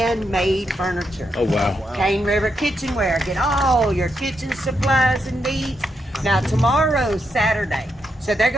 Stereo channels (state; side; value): normal; both; correlation 0.82